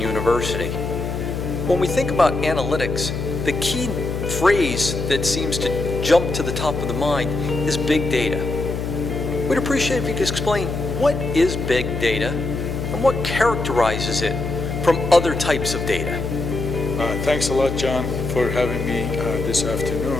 When we think about analytics, the key phrase that seems to jump to the top of the mind is big data. We'd appreciate if you could explain what is big data and what characterizes it from other types of data. Thanks a lot, John, for having me this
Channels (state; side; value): noise; left; hum, 4 dB below the sound